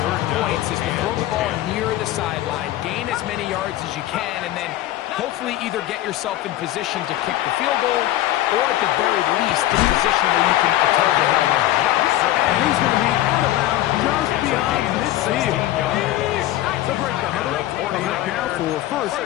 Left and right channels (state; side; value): quieter; right; 14.6 dB